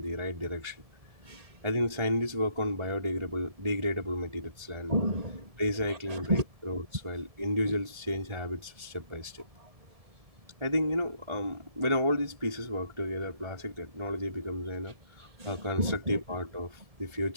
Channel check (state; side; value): late; left; 1.7 ms